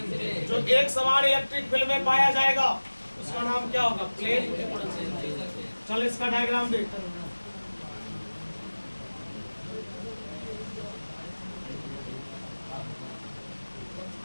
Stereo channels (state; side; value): inverted; both; correlation -1.00